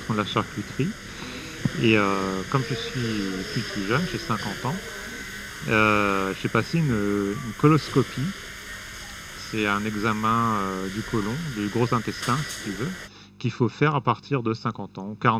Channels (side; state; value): both; identical; correlation 1.00